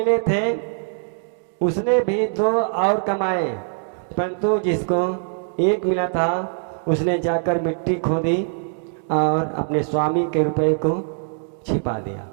थे उसने भी 2 और कमाए, परंतु जिसको 1 मिला था उसने जाकर मिट्टी खोदी और अपने स्वामी के रुपए को छिपा दिया।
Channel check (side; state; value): left; silent; 64 dB below the other